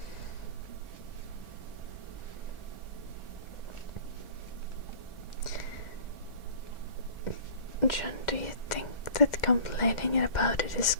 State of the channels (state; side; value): late; right; 1.4 ms